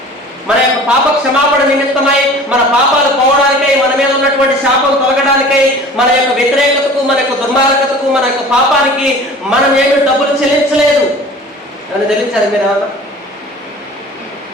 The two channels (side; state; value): both; normal; correlation 0.43